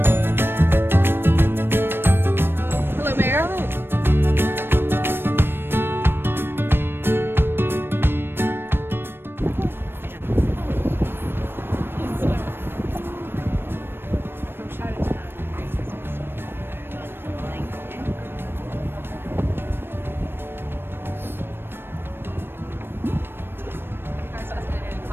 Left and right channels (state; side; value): late; left; 0.10 ms